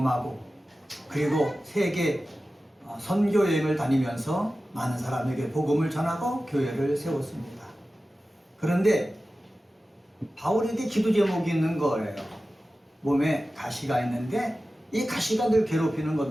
그리고 세계 선교 여행을 다니면서 많은 사람에게 복음을 전하고 교회를 세웠습니다. 그런데 바울에게 기도 제목이 있는 거예요. 몸에 가시가 있는데 이 가시가 늘 괴롭히는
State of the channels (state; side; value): normal; both; correlation 0.95